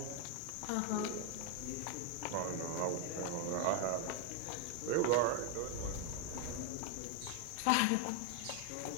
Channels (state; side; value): different; both; correlation 0.00